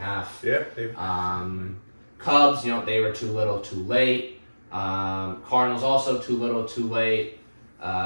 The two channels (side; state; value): both; inverted; correlation -1.00